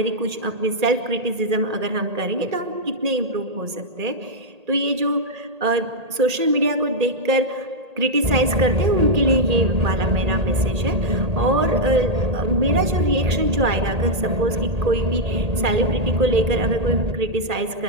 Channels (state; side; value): late; left; 1.8 ms